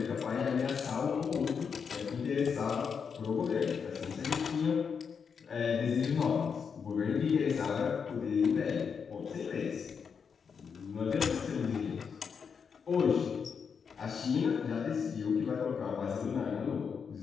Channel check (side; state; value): right; quieter; 6.3 dB